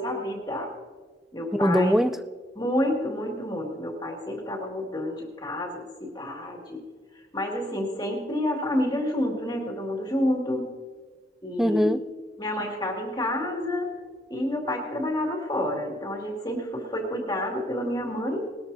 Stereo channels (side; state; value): both; normal; correlation 0.71